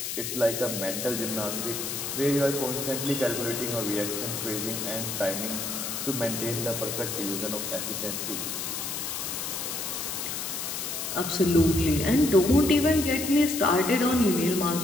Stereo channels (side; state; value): left; noise; hiss, 4 dB below the sound